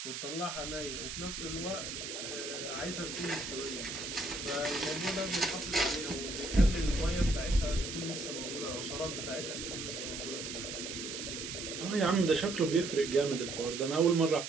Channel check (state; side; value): noise; right; hiss, 6 dB below the sound